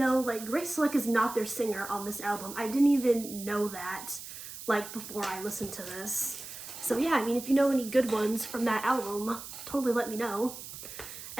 like, Grace Slick is not their singer on this album. I didn't even know that, like, before I listened to this. So yeah, I mean, if you know any good ones from that album, totally let me know.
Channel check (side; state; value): right; noise; hiss, 11 dB below the sound